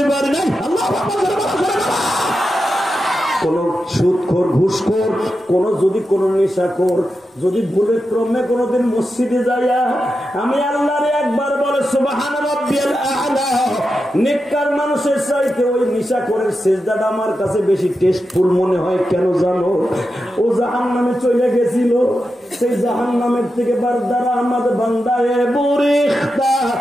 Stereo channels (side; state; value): both; normal; correlation 0.89